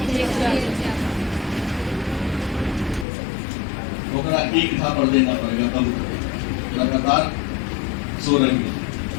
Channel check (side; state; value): right; drops out; at 3.1 s